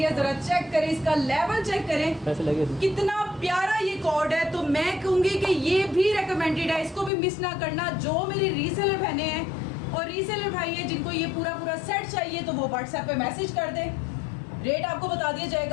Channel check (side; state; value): right; drops out; at 7.1 s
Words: है। ज़रा चेक करें, इसका लेवल चेक करें, कितना प्यारा ये कॉर्ड है। तो मैं कहूँगी कि ये भी रेकमेंडेड है, इसको भी मिस ना करना। जो मेरी रीसेलर बहनें हैं और रीसेलर भाई हैं जिनको ये पूरा सेट चाहिए, तो वो व्हाट्सएप पे मैसेज कर दें, रेट आपको बता दिया